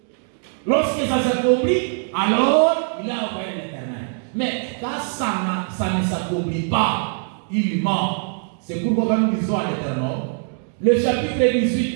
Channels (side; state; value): left; silent; 56 dB below the other